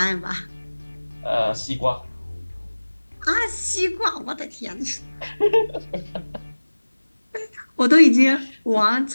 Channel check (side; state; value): both; inverted; correlation -1.00